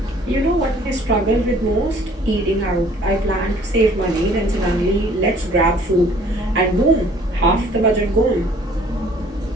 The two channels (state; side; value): normal; both; correlation 0.56